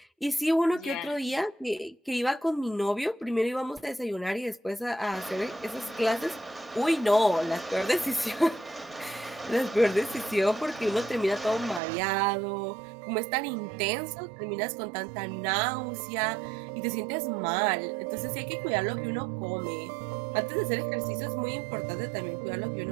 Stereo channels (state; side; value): drops out; left; at 11.8 s